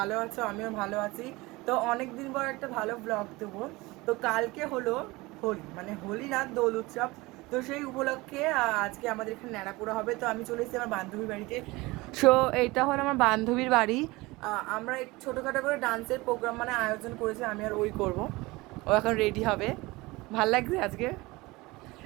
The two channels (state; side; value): quieter; left; 22.0 dB